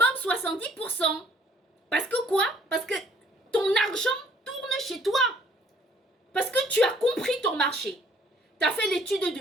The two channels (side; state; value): both; normal; correlation 0.60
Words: 70%. Parce que quoi? Parce que ton argent tourne chez toi. Parce que tu as compris ton marché. Tu as fait l'étude